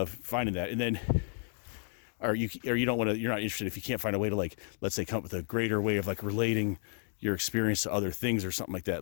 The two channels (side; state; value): right; silent; 56 dB below the other